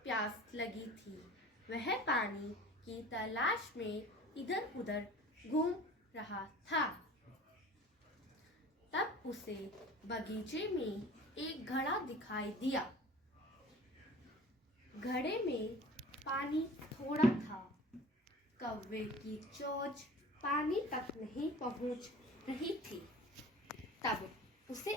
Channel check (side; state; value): both; normal; correlation 0.42